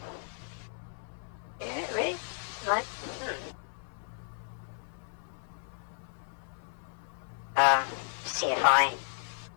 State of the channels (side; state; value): right; silent; 55 dB below the other